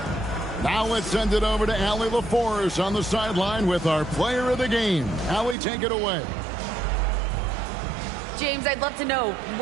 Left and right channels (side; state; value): left; drops out; at 5.6 s